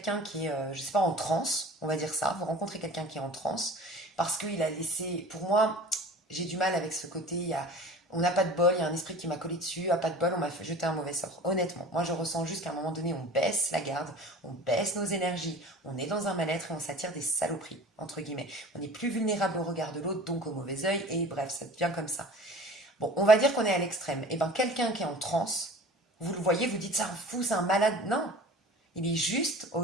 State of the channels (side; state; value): both; normal; correlation 0.41